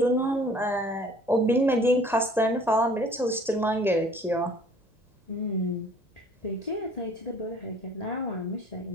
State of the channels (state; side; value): normal; both; correlation 0.54